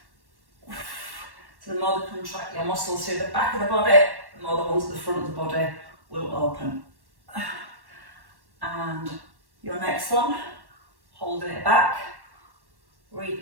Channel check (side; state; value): left; late; 1.1 ms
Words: So the more you contract your muscles through the back of the body, the more the ones at the front of the body will open. And your next one, holding it back,